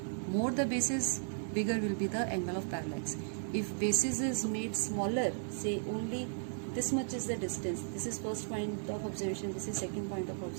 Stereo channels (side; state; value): left; silent; digital silence